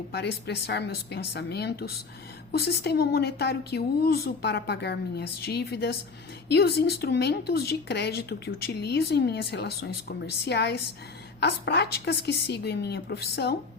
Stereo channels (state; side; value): quieter; right; 4.5 dB